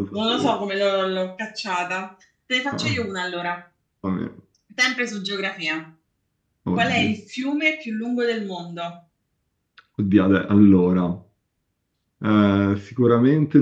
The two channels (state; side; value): identical; both; correlation 1.00